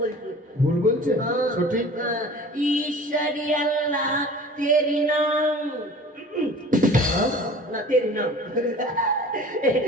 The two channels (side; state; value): both; normal; correlation 0.43